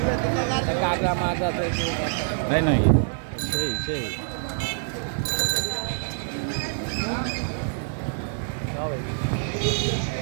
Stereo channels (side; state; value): left; silent; digital silence